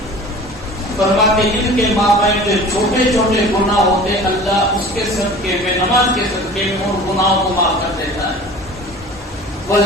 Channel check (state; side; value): normal; both; correlation 0.41